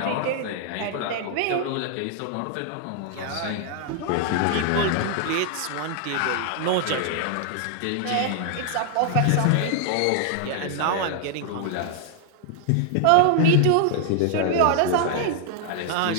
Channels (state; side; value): different; both; correlation 0.00